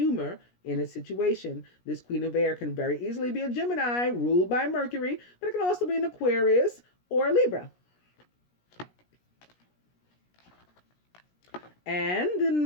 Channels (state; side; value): late; right; 17 ms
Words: in a situation. This Queen of Air can very easily be a Gemini, ruled by Mercury, but it can also be an Aquarius or a Libra. And the